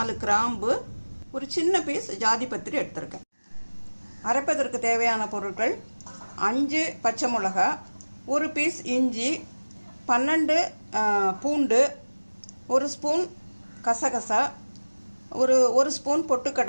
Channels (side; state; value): both; inverted; correlation -1.00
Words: கிராம்பு, ஒரு சின்ன பீஸ் ஜாதி பத்திரி எடுத்திருக்கேன். அரைப்பதற்கு தேவையான பொருட்கள்: 5 பச்சை மிளகா, ஒரு பீஸ் இஞ்சி, 12 பூண்டு, 1 ஸ்பூன் கசகசா, ஒரு ஸ்பூன்